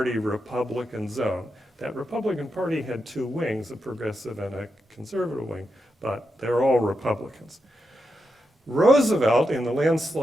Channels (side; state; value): both; normal; correlation 0.86